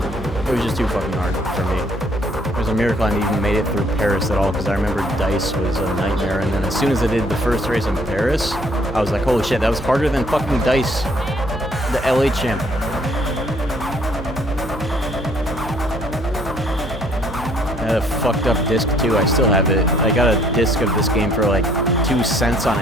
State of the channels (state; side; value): normal; both; correlation 0.63